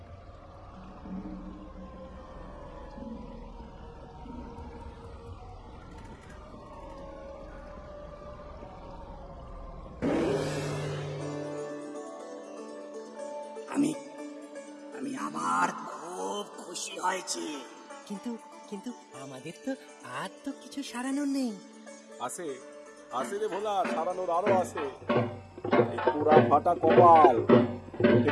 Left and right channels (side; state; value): both; identical; correlation 1.00